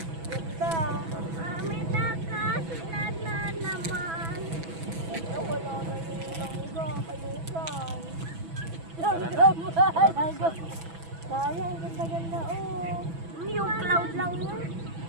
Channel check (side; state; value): left; late; 6.1 ms